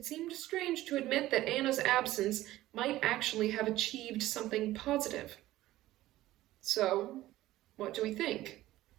seemed strange to admit that Anna's absence might actually have achieved something positive. "So, what do we think?"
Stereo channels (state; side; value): quieter; left; 15.8 dB